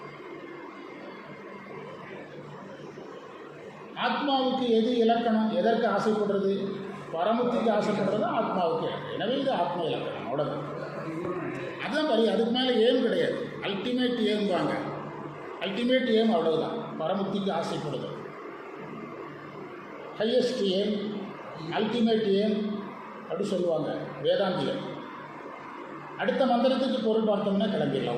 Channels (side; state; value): both; identical; correlation 1.00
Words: ஆத்மாவுக்கு எது இலக்கணம்? எதற்கு ஆசைப்படுறது? பரமுக்திக்கு ஆசைப்படுறது ஆத்மாவுக்கு இலக்கணம். எனவே இது ஆத்மா இலக்கணம். அவ்வளோதான். அதுதான் வரி. அதுக்கு மேலே ஏம் கிடையாது. அல்டிமேட் ஏம்பாங்க. அல்டிமேட் ஏம் அவ்வளவுதான். பரமுக்திக்கு ஆசைப்படுது. ஹையஸ்ட் ஏம், அல்டிமேட் ஏம் அப்படி சொல்லுவாங்க வேதாந்திகள். அடுத்த மந்திரத்துக்கு பொருள் பார்த்தோம்னா